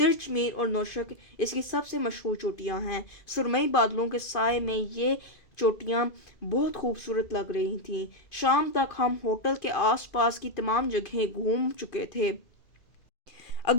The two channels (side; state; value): right; late; 2.5 ms